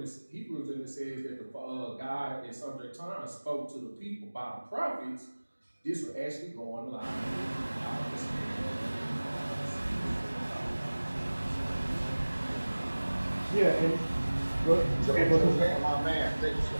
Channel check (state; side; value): inverted; both; correlation -1.00